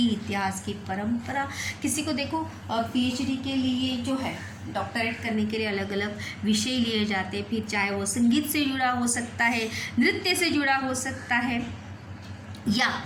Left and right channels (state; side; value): identical; both; correlation 1.00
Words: इतिहास की परंपरा, किसी को देखो पीएचडी के लिए जो है डॉक्टरेट करने के लिए अलग अलग विषय लिए जाते हैं, फिर चाहे वो संगीत से जुड़ा हो सकता है, नृत्य से जुड़ा हो सकता है या